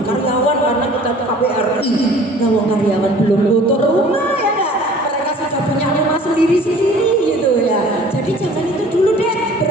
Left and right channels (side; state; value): both; normal; correlation 0.49